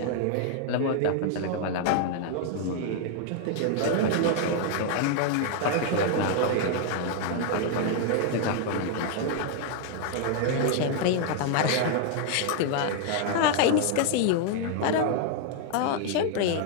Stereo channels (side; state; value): both; different; correlation 0.00